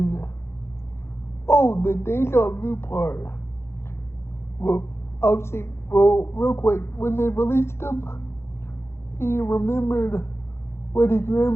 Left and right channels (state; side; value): late; right; 0.12 ms